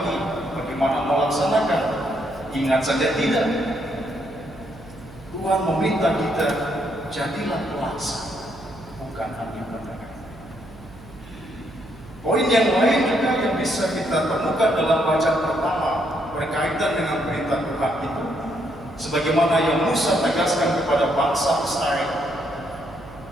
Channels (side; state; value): right; noise; hum, 20 dB below the sound